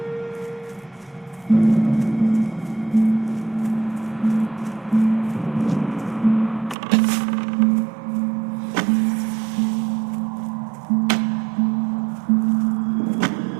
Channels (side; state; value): left; drops out; at 6.8 s